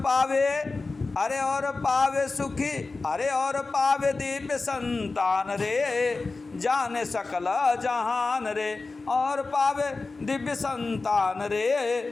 अरे और पावे सुखी, अरे और पावे दिव्य संतान रे, जाने सकल जहान रे। और पावे दिव्य संतान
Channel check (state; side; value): quieter; right; 3.8 dB